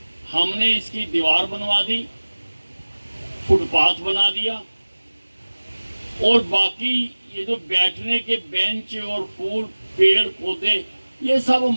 हमने इसकी दीवार बनवा दी, फुटपाथ बना दिया, और बाकी ये जो बैठने के बेंच और फूल पेड़ पौधे ये सब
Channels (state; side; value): inverted; both; correlation -1.00